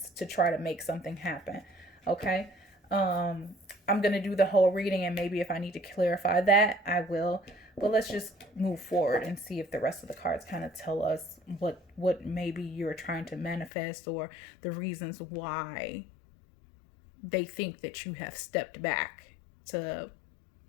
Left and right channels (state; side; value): drops out; right; at 13.7 s